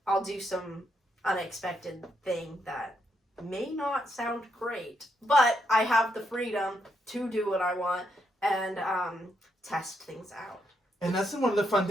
I'll do some unexpected thing that may not sound great, but I have the freedom to do what I want and test things out. And that's one of the fun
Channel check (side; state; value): both; normal; correlation 0.78